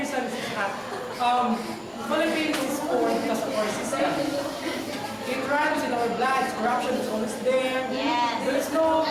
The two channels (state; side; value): identical; both; correlation 1.00